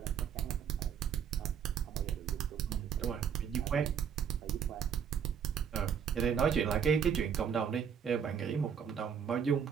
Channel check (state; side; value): quieter; left; 7.7 dB